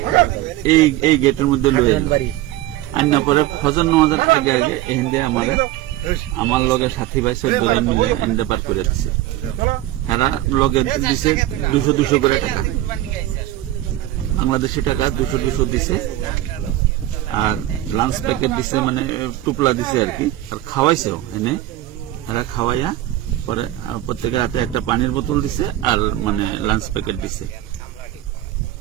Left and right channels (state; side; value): quieter; left; 14.8 dB